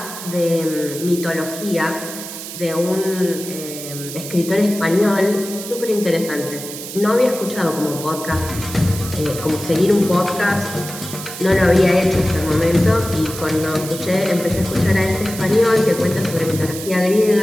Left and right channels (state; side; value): noise; right; hiss, 10 dB below the sound